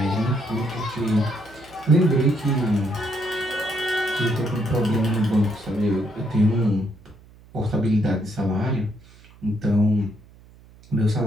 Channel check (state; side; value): noise; right; hum, 24 dB below the sound